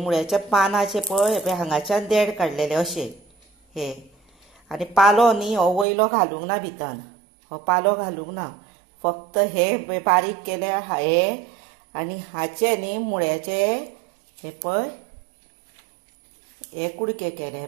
पानाचे पळय हे पळय हांगाच्यान देड काडलेले अशे हे आनी पालो न्ही हो वयलो घालूंक ना भितर, हो पालो घालूंक ना, फक्त हे बारीक केले हे आनी हाचे न्ही मुळ्याचे हे पळय हे कुडके केले हे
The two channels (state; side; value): drops out; left; at 5.9 s